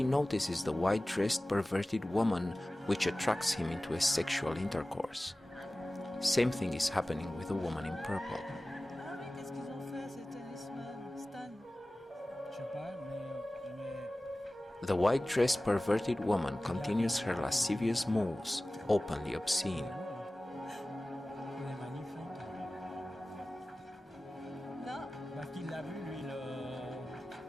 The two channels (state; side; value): normal; both; correlation 0.97